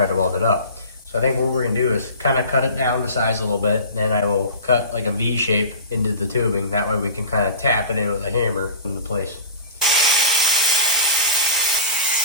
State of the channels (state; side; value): inverted; both; correlation -0.36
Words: to weld it up. So I think what we're gonna do is kind of cut it down to size a little bit. Then I will cut like a V shape into the tubing. That way we can kind of tap it in with a hammer into place.